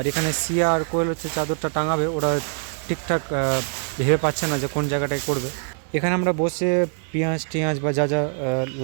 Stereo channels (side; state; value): left; silent; digital silence